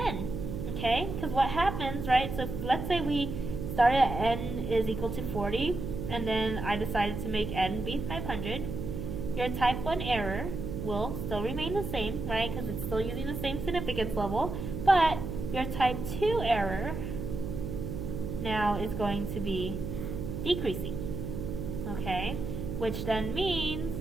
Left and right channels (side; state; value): right; noise; hum, 5 dB below the sound